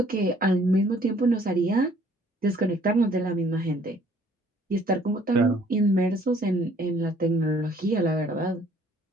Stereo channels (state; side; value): normal; both; correlation 0.60